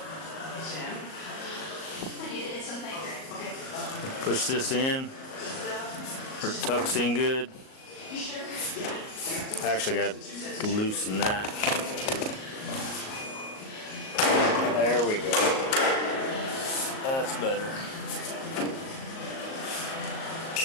Sam? I need to hit some paper. Okay. Push this in. It tucks in good. You sure? I actually got to loosen that. There we go. That's better.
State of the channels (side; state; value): right; late; 38 ms